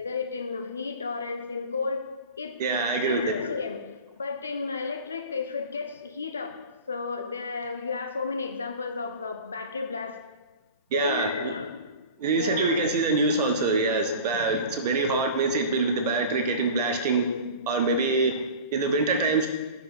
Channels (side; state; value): both; inverted; correlation -0.36